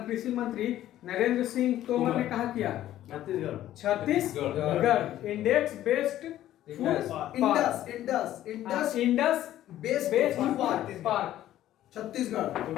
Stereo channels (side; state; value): right; quieter; 13.1 dB